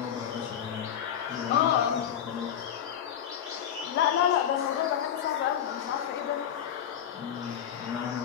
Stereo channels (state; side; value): quieter; right; 9.4 dB